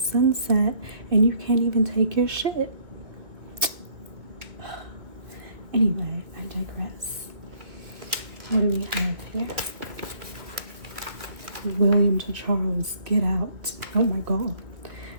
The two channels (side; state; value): left; late; 2.0 ms